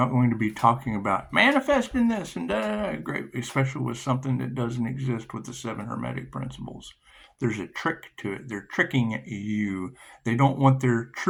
going to be talking about manifesting this and great, especially with something that doesn't exist with the 7 Hermetic principles. There's a trick to it. They're tricking you. They don't want their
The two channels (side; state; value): both; identical; correlation 1.00